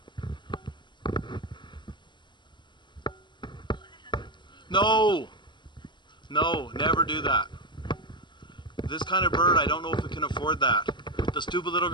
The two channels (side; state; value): right; late; 0.22 ms